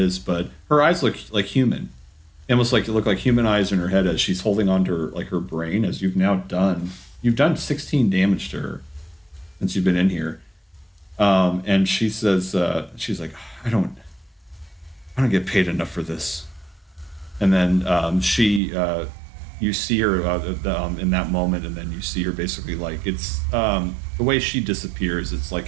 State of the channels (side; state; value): left; drops out; at 18.6 s